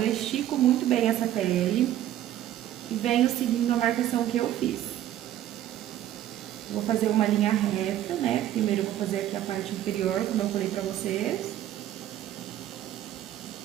estico muito bem essa pele e venho seguindo a marcação que eu fiz. Vou fazer uma linha reta, né? Primeiro eu vou fazer aqui a parte inferior, como eu falei pra vocês.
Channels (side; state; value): left; quieter; 12.5 dB